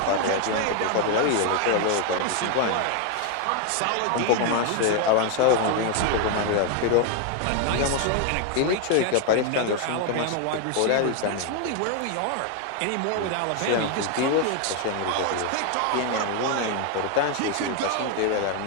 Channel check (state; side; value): different; both; correlation 0.01